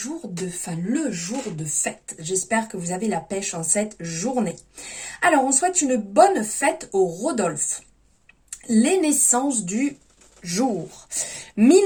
de fête. J'espère que vous avez la pêche en cette journée. Alors, on souhaite une bonne fête au Rodolphe. Les naissances du jour.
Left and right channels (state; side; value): identical; both; correlation 1.00